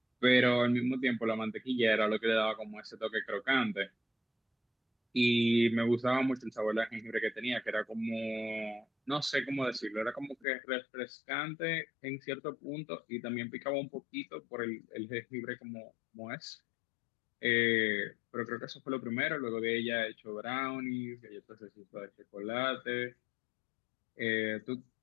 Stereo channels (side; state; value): right; drops out; at 10.5 s